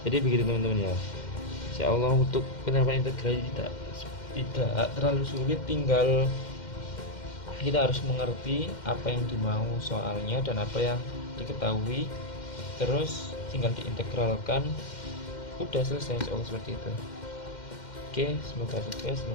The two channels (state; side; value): late; right; 2.1 ms